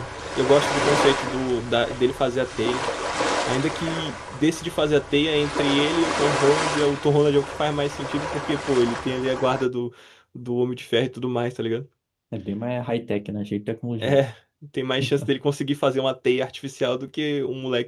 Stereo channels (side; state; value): both; identical; correlation 1.00